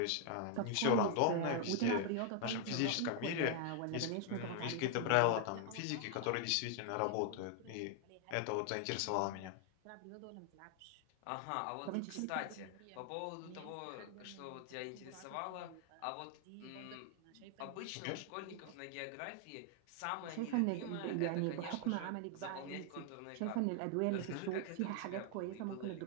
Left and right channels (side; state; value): both; different; correlation 0.00